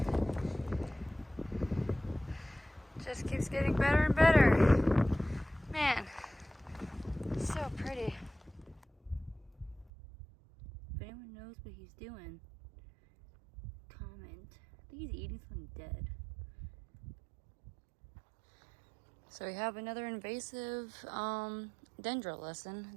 Just keeps getting better and better. Man, it's so pretty. If anyone knows what he's doing, comment. I think he's eating something dead. So we have another invasive dendril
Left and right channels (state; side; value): drops out; left; at 9.9 s